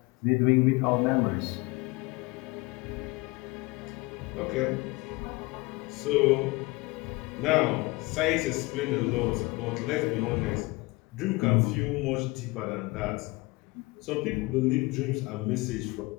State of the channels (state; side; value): quieter; right; 23.6 dB